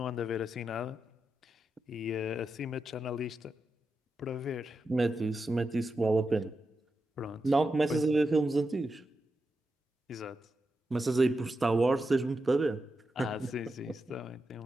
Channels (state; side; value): normal; both; correlation 0.88